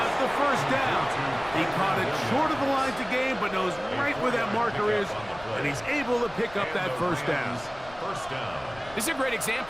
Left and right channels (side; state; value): left; noise; rumble, 20 dB below the sound